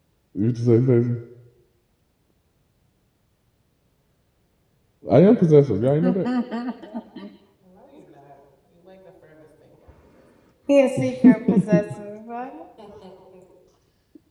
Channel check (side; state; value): both; identical; correlation 1.00